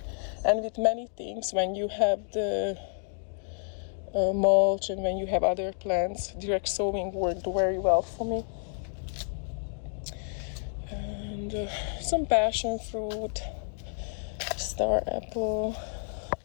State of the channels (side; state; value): right; silent; digital silence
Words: And with many things, when you have the mulch and when you have other plants, direct sowing worked very well for me. And some passion fruit, star apple,